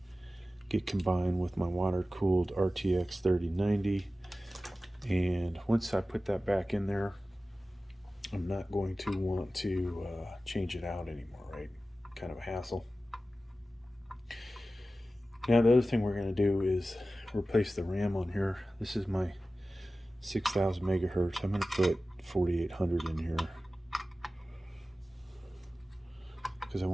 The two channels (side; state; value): both; normal; correlation 0.95